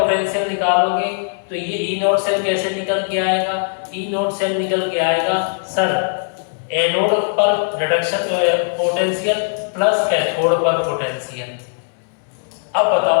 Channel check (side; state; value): right; silent; 63 dB below the other